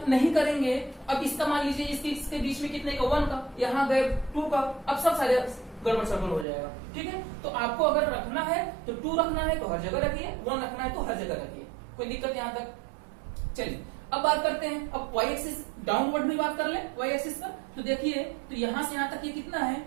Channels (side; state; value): left; drops out; at 6.5 s